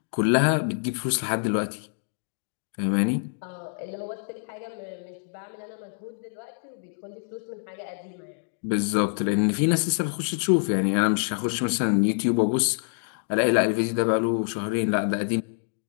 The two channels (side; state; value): right; silent; 61 dB below the other